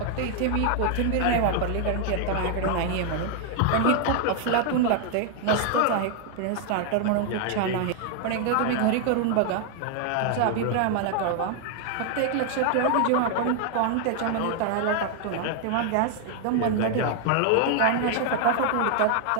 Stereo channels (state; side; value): different; both; correlation 0.00